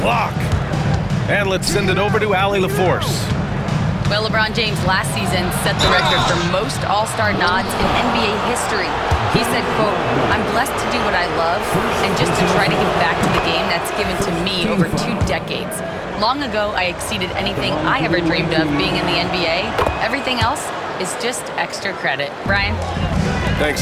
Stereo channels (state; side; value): identical; both; correlation 1.00